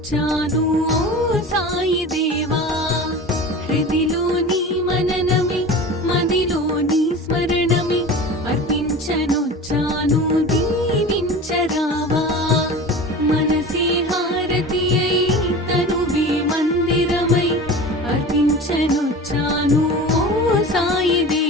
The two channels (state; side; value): normal; both; correlation 0.34